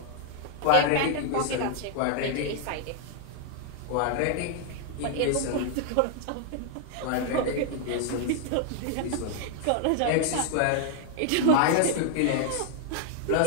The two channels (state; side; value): different; both; correlation 0.00